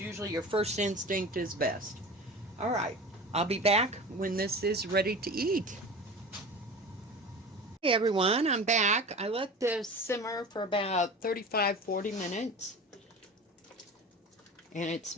your first instinct is best. All right, I'll be back when this is ready to eat. Hey everyone, I'm back. I let this simmer for about 35-40 minutes. And it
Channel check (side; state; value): both; normal; correlation 0.34